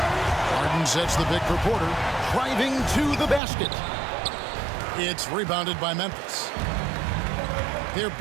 Harden sets the pick for Porter, driving to the basket. It's rebounded by Memphis. Their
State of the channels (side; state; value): left; drops out; at 3.4 s